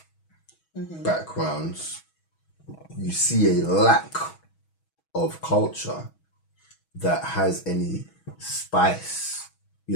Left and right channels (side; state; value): right; late; 6.2 ms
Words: backgrounds, you see a lack of culture that has any spice,